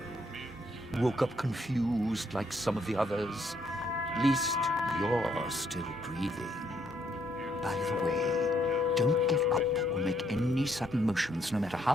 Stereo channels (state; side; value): normal; both; correlation 0.71